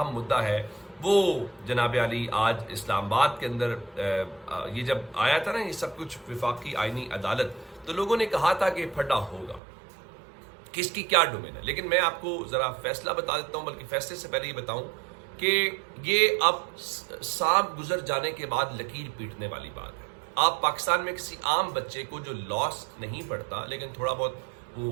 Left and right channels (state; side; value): drops out; left; at 9.6 s